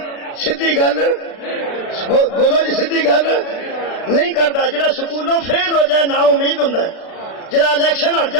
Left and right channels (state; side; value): late; right; 36 ms